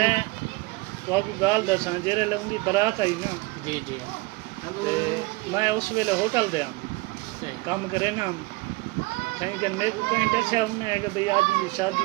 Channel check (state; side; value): quieter; left; 23.7 dB